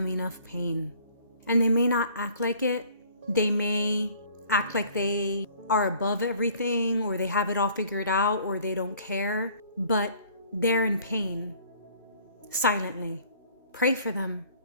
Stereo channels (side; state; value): both; inverted; correlation -0.55